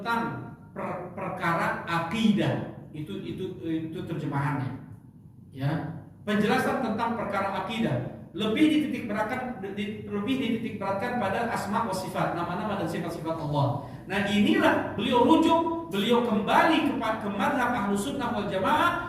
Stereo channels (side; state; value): both; identical; correlation 1.00